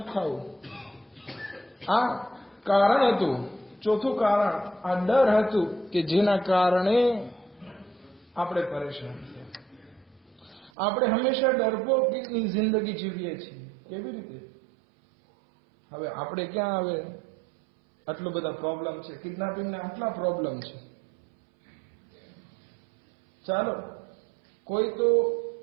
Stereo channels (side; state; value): left; drops out; at 10.7 s